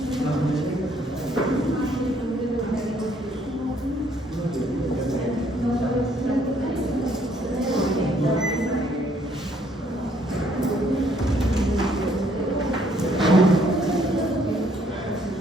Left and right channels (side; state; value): both; normal; correlation 0.66